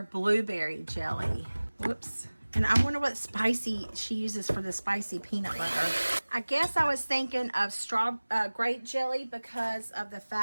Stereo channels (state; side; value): inverted; both; correlation -1.00